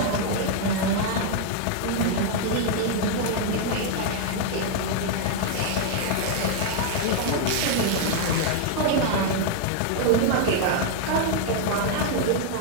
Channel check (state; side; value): different; both; correlation 0.00